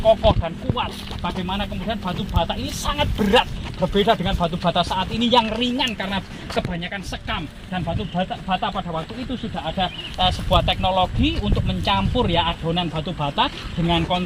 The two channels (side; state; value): both; identical; correlation 1.00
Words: kokoh dan kuat. Bagaimana kemudian batu bata ini sangat berat, berbeda dengan batu bata saat ini yang ringan karena kebanyakan sekam. Dan batu bata pada waktu itu sudah ada sebuah teknologi untuk mencampur ya adonan batu bata dengan